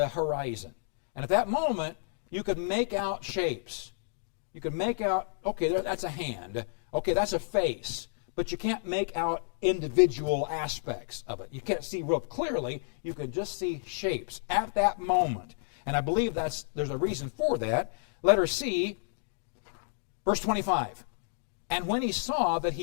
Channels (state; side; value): silent; right; digital silence